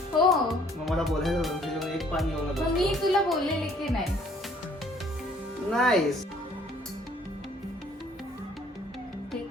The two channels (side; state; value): both; normal; correlation 0.60